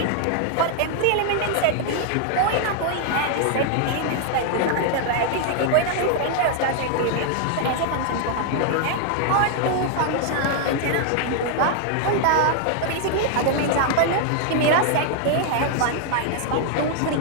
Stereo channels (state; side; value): different; both; correlation 0.00